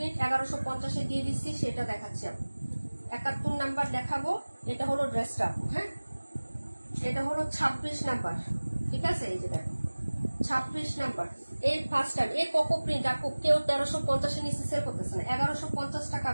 1150-এ দিয়ে দিচ্ছি, সেটা দেখাচ্ছি আপু। 71 নাম্বার দেখাবো। এটা হলো ড্রেসটা আপু, হ্যাঁ এটা হলো 26 নাম্বার, ঠিক আছে। এই যে দেখো 26 নাম্বার, এই ফার্স্ট টাইম এই কোকো প্রিন্ট আপু কেউ 1350-এ নিচে সেল করতেছে না। 1150 টাকা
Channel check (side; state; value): both; inverted; correlation -1.00